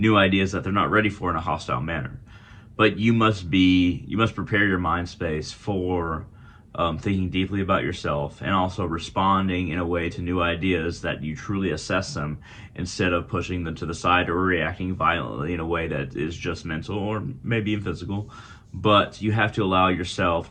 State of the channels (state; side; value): identical; both; correlation 1.00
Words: ideas that they're not ready for in a hostile manner. But you must prepare your mind space for thinking deeply about yourself, and also responding in a way to new ideas that you truly assess them, instead of pushing them to the side or reacting violently in a way that is just mental or maybe even physical. But you have to allow yourself